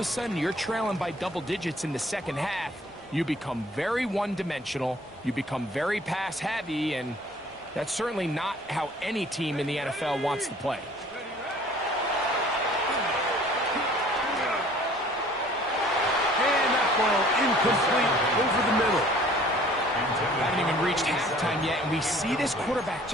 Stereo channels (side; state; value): both; normal; correlation 0.53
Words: a sudden you're trailing by double digits in the second half. You become very one-dimensional, you become very pass-heavy, and that's certainly not how any team in the NFL wants to play. And that ball incomplete over the middle. Haven't even reached halftime yet, and we see this quarterback